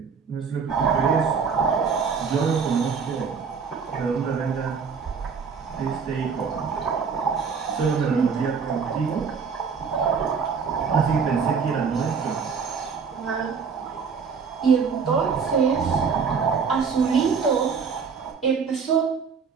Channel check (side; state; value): left; quieter; 5.9 dB